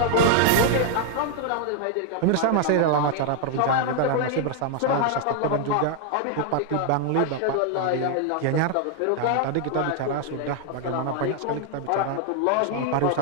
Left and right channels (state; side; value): different; both; correlation 0.00